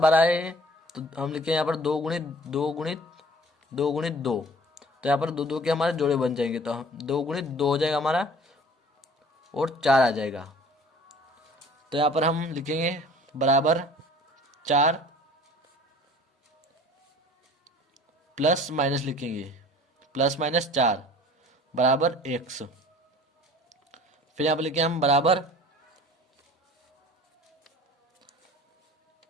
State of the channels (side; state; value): both; normal; correlation 0.48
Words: आए हैं तो हम लिखें यहाँ पर 2 गुणित 2 गुणित 2 गुणित 2। तो यहाँ पर 2 2 के हमारे जोड़े बन जाएंगे तो 2 गुणित 2 हो जाएगा हमारा और 4 आ जाएगा। तो यहाँ पर हम लिखेंगे बराबर 4 प्लस माइनस लिखेंगे, प्लस माइनस 4 बराबर एक्स। फिर यहाँ पर लिखेंगे हम बराबर